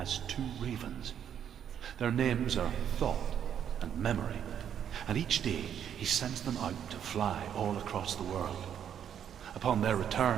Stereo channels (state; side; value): quieter; left; 9.0 dB